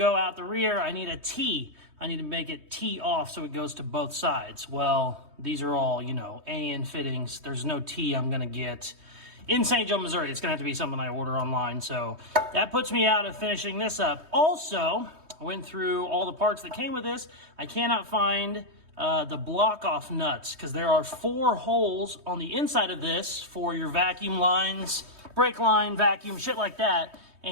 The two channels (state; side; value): late; left; 3.2 ms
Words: out the rear, I need a T. I need to make it T off so it goes to both sides. Well, these are all, you know, AN fittings. There's no T I'm gonna get in St. Joe, Missouri. It's gonna have to be something I order online. So that puts me out of finishing this up. Also, I went through all the parts that came with this. I cannot find the block off nuts because there are 4 holes on the inside of this for your vacuum lines, brake line, vacuum, shit like that.